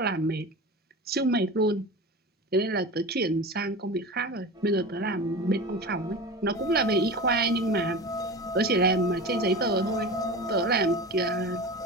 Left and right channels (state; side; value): normal; both; correlation 0.30